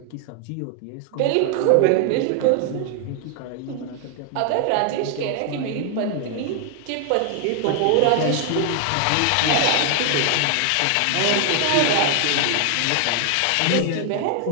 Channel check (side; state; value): both; different; correlation 0.00